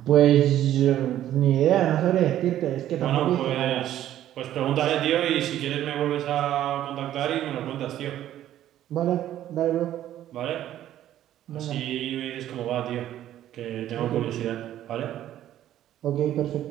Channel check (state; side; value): quieter; left; 12.3 dB